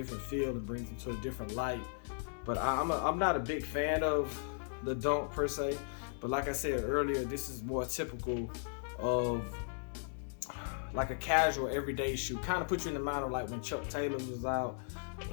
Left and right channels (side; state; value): right; silent; digital silence